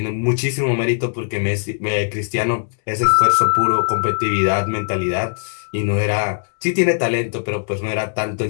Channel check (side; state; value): right; silent; digital silence